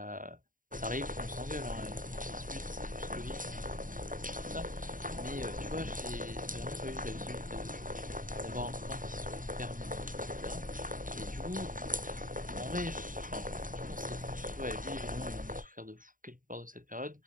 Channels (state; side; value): late; left; 0.39 ms